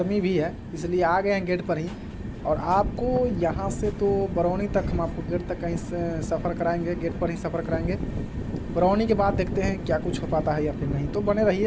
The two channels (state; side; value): identical; both; correlation 1.00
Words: भी है, इसलिए आ गए हैं गेट पर ही। और आपको यहाँ से तो बरौनी तक हम आपको गेट तक कहीं से सफ़र कराएंगे, गेट पर ही सफ़र कराएंगे। बरौनी के बाद देखते हैं क्या कुछ हो पाता है या फिर नहीं, तो बने